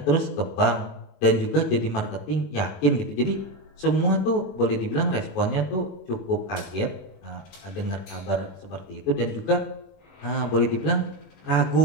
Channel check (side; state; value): right; late; 21 ms